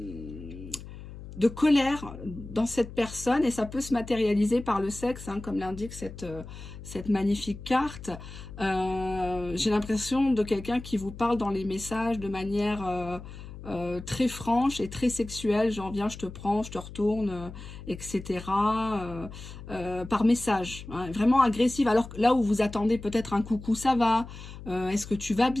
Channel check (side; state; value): left; noise; hum, 13 dB below the sound